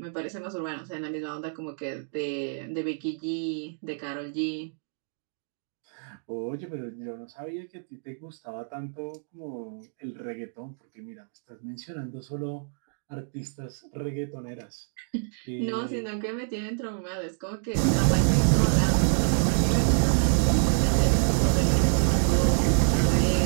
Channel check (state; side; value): silent; left; digital silence